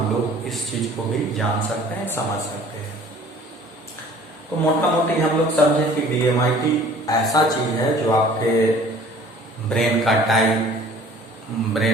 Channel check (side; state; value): both; normal; correlation 0.50